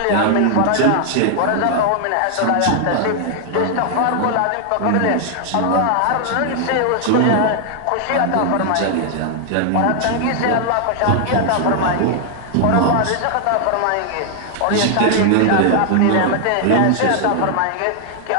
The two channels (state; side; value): different; both; correlation 0.00